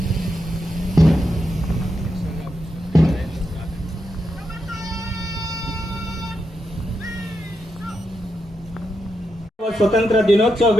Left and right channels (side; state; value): both; normal; correlation 0.85